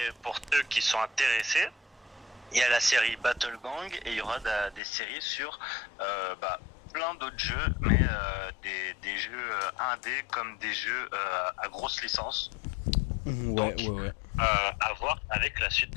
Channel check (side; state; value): right; drops out; at 4.8 s